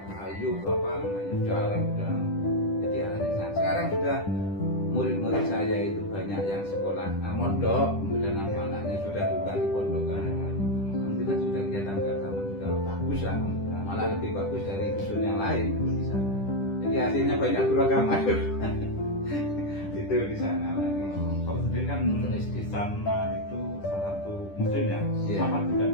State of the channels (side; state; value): right; late; 10 ms